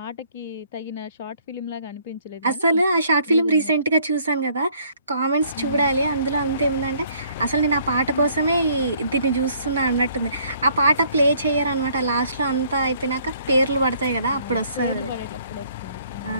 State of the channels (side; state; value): both; inverted; correlation -0.62